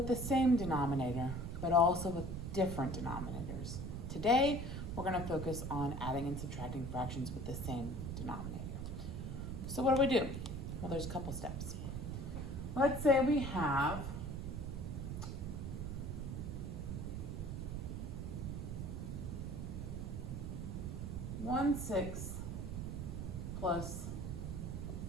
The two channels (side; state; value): right; noise; rumble, 4 dB below the sound